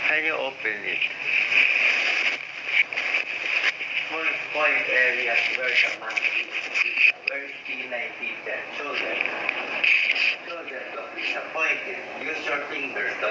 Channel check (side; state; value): both; identical; correlation 1.00